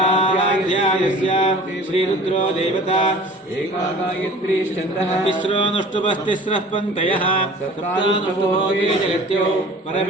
श्रीरुद्रो देवता एकागायत्रीश्चन्द्रः तिस्रोऽनुष्टुपस्तिस्रः पङ्क्तयः सप्तानुष्टुभोगे जगत्यो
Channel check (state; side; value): normal; both; correlation 0.44